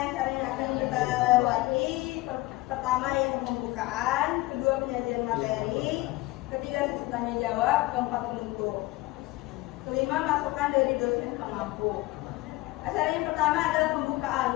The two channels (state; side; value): quieter; right; 19.5 dB